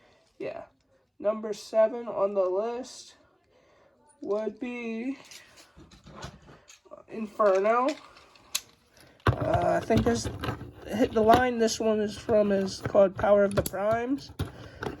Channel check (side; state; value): both; identical; correlation 1.00